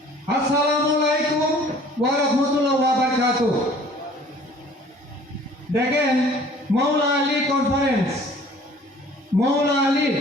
আসসালামু আলাইকুম ওয়া রাহমাতুল্লাহি ওয়া বারাকাতুহু। দেখেন, মৌলা আলী কনফারেন্স,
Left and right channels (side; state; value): both; normal; correlation 0.52